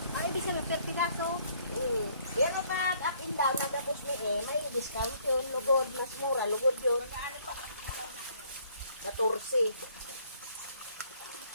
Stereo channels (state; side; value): inverted; both; correlation -0.63